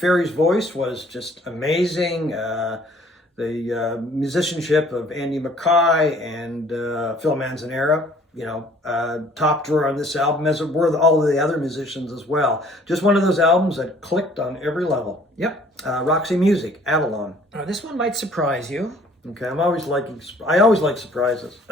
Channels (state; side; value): normal; both; correlation 0.56